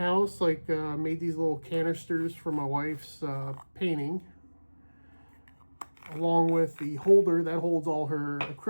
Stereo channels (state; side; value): inverted; both; correlation -1.00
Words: Like made these little canisters for my wife's painting, along with the holder that holds all her